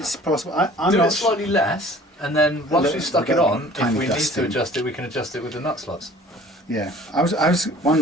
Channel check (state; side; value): normal; both; correlation 0.49